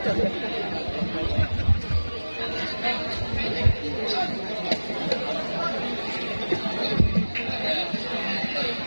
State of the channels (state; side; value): inverted; both; correlation -1.00